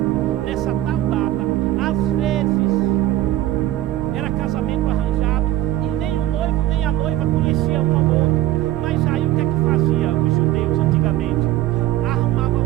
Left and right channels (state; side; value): quieter; left; 14.5 dB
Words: Nessa tal data, às vezes casamento arranjado, e nem o noivo nem a noiva conheciam um ao outro. Mas aí o que é que fazia os judeus antigamente? Arrumava